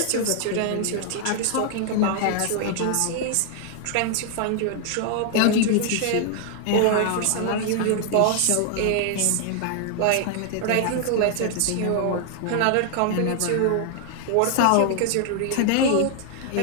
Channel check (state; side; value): different; both; correlation 0.00